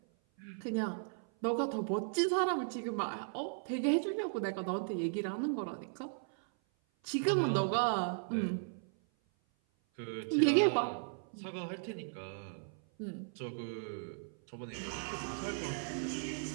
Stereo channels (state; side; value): silent; left; 53 dB below the other